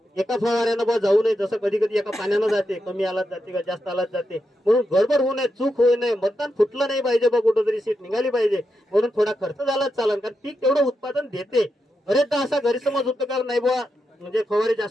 एका फवाऱ्यानं बा जाऊ नये, जसं कधी कधी एका पाण्यानं जाते, कमी आलाच जाते का जास्त आलाच जाते, म्हणून गडबड होऊ नये, चूक होऊ नये, मतदान फुटलं नाही पाहिजे बा, कुठं तरी सीट निघाली पाहिजे, म्हणून थोडा खर्च झालाच चालेल, कारण पीक तेवढं उत्पादन देते. बरेचदा असा गैरसमज होतो का नाही बा म्हणजे फवारे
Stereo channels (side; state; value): both; normal; correlation 0.86